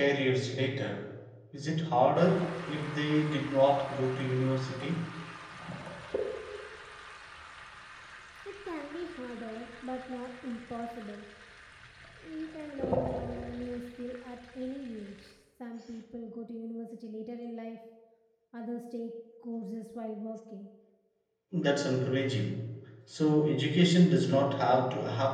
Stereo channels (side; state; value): both; identical; correlation 1.00